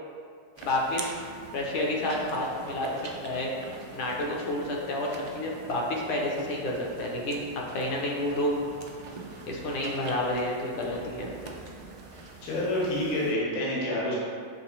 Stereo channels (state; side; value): late; right; 10 ms